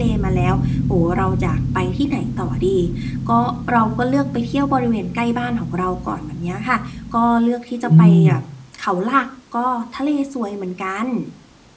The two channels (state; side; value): identical; both; correlation 1.00